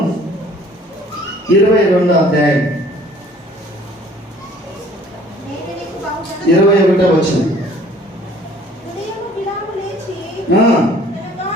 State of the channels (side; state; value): both; normal; correlation 0.54